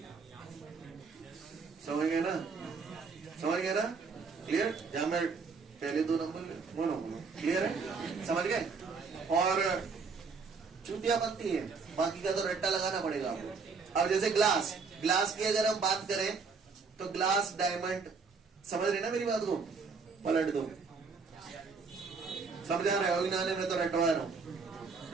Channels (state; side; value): quieter; left; 5.0 dB